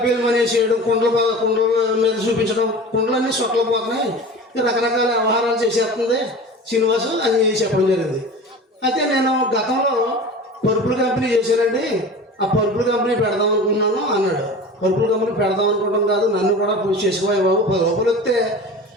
మనేసేయడం, కుండల మీద చూపించడం, కుండలన్నీ సొక్కలు పోతున్నాయి, రకరకాల వ్యవహారాలు చేసేస్తుంది శ్రీనివాసు అని చెప్పడం జరిగింది. అయితే నేను గతంలో పరుపుల కంపెనీ చేశానండి, ఆ పరుపుల కంపెనీ పెడదాం అనుకున్నాను అన్నాడు. పరుపుల కంపెనీ పెడదాం అనుకోవడం కాదు, నన్ను కూడా పూజ చేసుకోవాలి బాబు, 10 రూపాయలు వస్తే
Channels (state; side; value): normal; both; correlation 0.36